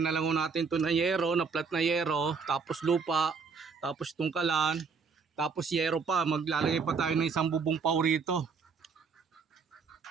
na lang natin ito na yero, na flat na yero. Tapos lupa. Tapos tungkalan. Tapos yero pa. Maglalagay pa tayo ng isang bubong pau rito.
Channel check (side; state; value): left; quieter; 5.3 dB